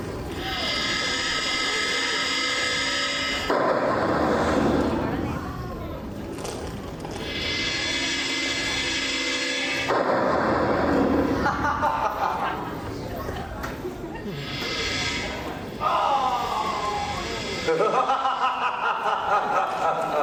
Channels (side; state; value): both; identical; correlation 1.00